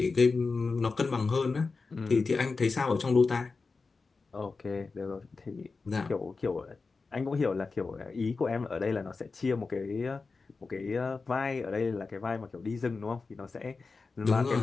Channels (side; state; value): right; quieter; 4.2 dB